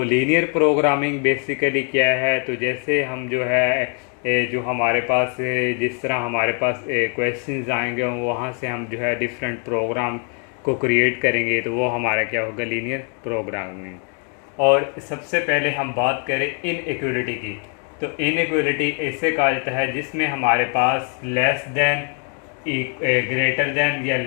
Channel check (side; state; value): right; quieter; 39.0 dB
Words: लीनियर प्रोग्रामिंग बेसिकली क्या है? तो जैसे हम जो है जो हमारे पास जिस तरह हमारे पास क्वेश्चंस आएंगे, वहाँ से हम जो है डिफरेंट प्रोग्राम को क्रिएट करेंगे, तो वो हमारा क्या होगा? Linear programming. और सबसे पहले हम बात करें इनइक्वालिटी की। तो इनइक्वालिटी ऐसे कहा जाता है जिसमें हमारे पास लेस देन, ग्रेटर देन या